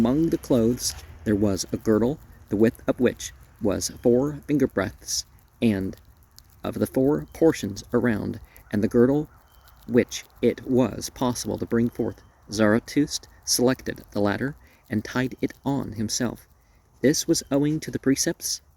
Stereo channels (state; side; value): identical; both; correlation 1.00